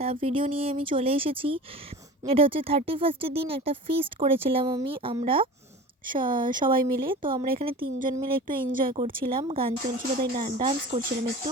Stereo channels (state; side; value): normal; both; correlation 0.36